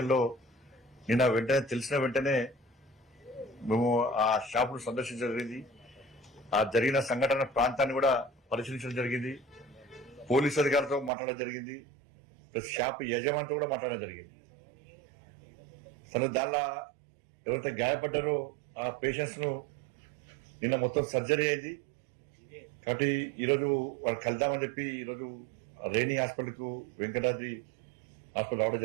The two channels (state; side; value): drops out; left; at 11.1 s